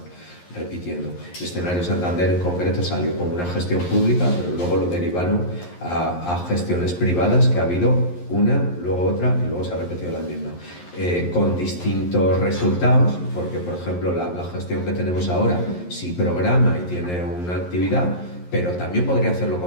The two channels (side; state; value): right; late; 11 ms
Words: repitiendo. El escenario Santander en concreto salió como una gestión pública, pero luego lo derivaron a gestiones privadas, que ha habido una, luego otra y luego se ha repetido la misma, con distintos resultados, porque por ejemplo la gestión que tenemos ahora sí programa y tiene una actividad, pero también podría hacer lo